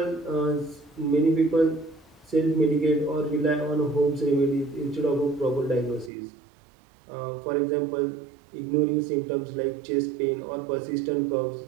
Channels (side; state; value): left; drops out; at 6.1 s